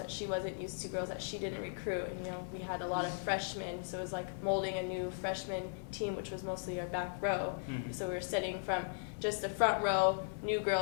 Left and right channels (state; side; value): silent; right; digital silence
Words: she wasn't used to, girls that she didn't recruit. And, we had a lot of freshmen, so it was like molding a new freshman team, which was mostly our back row. Mm-hmm. So we were setting from just the front row, new